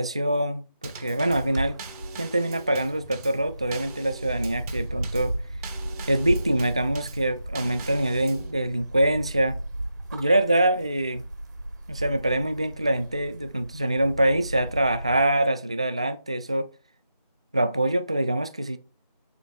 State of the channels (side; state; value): both; inverted; correlation -0.87